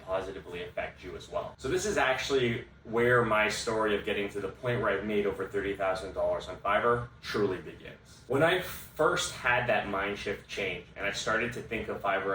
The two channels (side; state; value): both; identical; correlation 1.00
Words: affect you as well. So this is actually where my story of getting to the point where I've made over $30,000 on Fiverr truly begins. When I first had that mind shift change and I started to think of